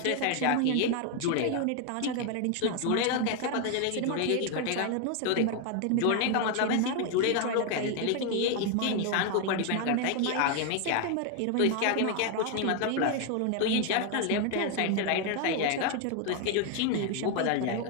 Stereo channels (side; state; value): both; different; correlation 0.01